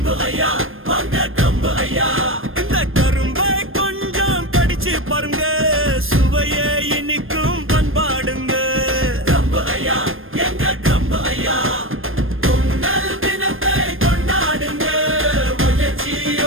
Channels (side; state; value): left; late; 0.60 ms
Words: ஐயா வாங்க ட்ரம்ப் ஐயா. இந்த கரும்பை கொஞ்சம் கடிச்சு பாருங்க, சுவையை இனிக்கும் பண்பாடுங்க. ட்ரம்ப் ஐயா எங்க ட்ரம்ப் ஐயா. பொங்கல் தினத்தை கொண்டாடுங்க,